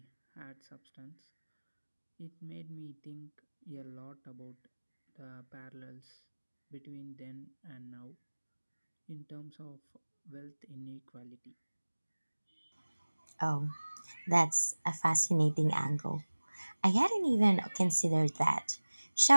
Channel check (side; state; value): both; inverted; correlation -1.00